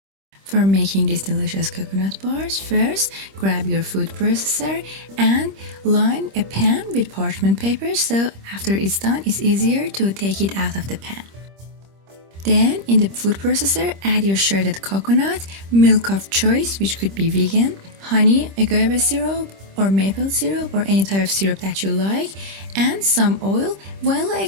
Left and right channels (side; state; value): left; late; 26 ms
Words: For making these delicious coconut bars, first grab your food processor and line a pan with parchment paper, so after it's done it's easier to take it out of the pan. Then in the food processor add your shredded coconut, milk of choice which could be vegan, honey, agave syrup or maple syrup or any type of syrup that you like, and some oil. Vanilla